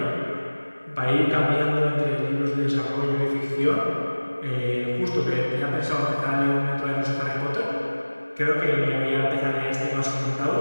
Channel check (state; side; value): inverted; both; correlation -1.00